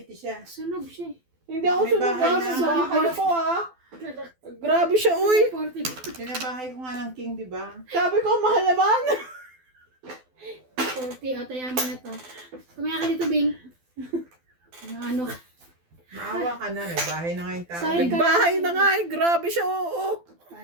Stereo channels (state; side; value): late; left; 12 ms